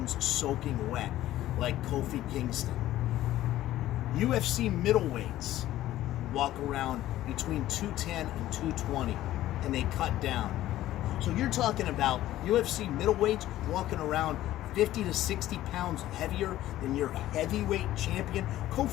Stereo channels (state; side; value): quieter; right; 14.3 dB